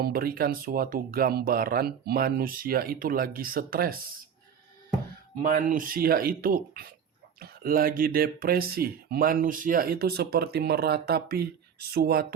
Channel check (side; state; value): left; quieter; 7.7 dB